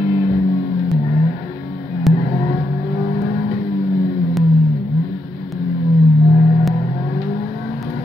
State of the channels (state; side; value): normal; both; correlation 0.81